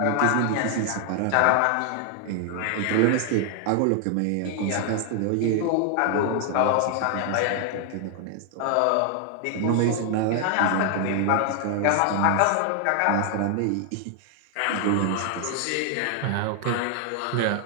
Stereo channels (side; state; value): both; different; correlation 0.00